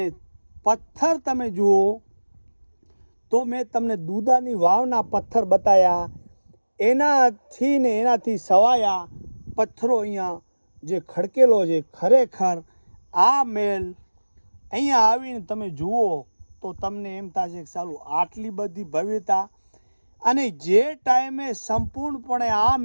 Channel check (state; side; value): inverted; both; correlation -1.00